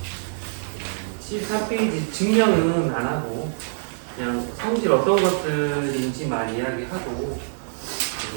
73페이지 증명은 안 하고 그냥 성질 어떤 것들인지만 이야기하고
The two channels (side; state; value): left; silent; digital silence